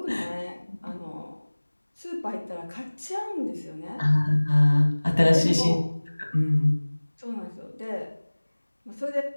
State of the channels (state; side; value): inverted; both; correlation -1.00